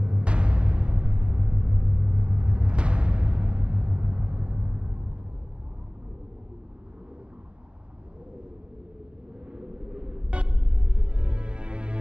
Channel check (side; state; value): left; late; 0.057 ms